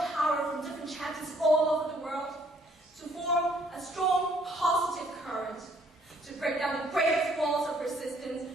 power from different chapters all over the world to form a strong, positive current to break down the greatest walls of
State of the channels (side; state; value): both; normal; correlation 0.63